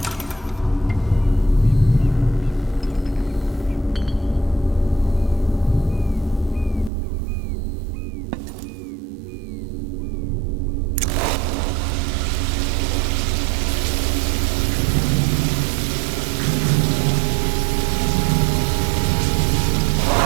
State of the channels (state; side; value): drops out; left; at 6.9 s